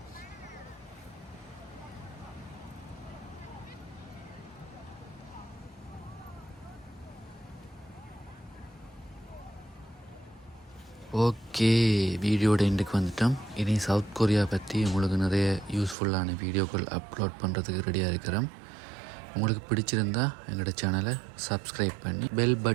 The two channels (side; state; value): left; drops out; at 16.0 s